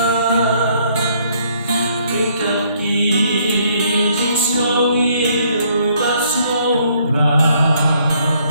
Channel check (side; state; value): both; inverted; correlation -0.66